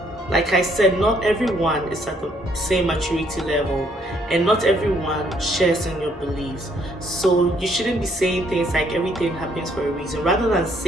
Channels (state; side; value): normal; both; correlation 0.67